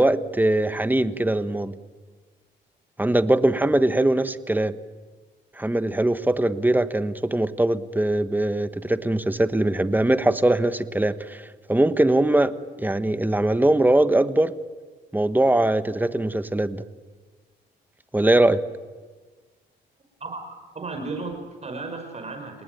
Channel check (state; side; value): normal; both; correlation 0.93